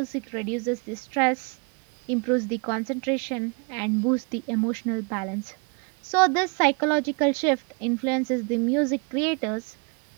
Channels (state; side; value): quieter; left; 34.7 dB